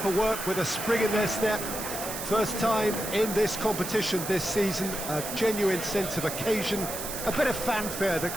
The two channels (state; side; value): noise; right; hiss, 6 dB below the sound